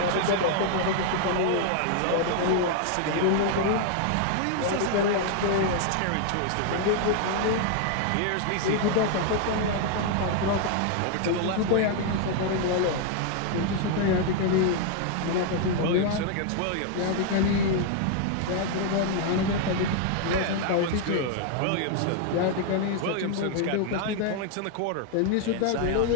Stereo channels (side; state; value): both; different; correlation 0.00